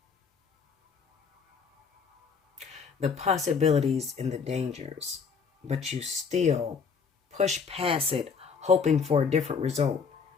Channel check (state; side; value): quieter; right; 5.8 dB